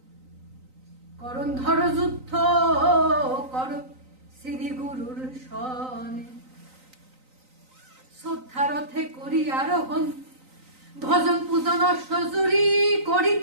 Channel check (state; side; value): late; left; 3.9 ms